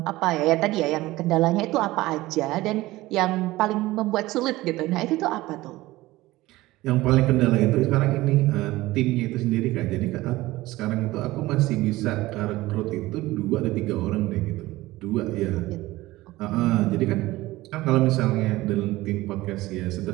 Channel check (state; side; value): quieter; left; 18.3 dB